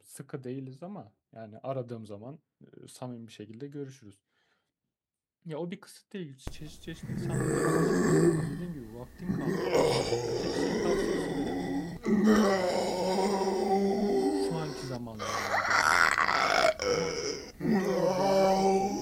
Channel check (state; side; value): identical; both; correlation 1.00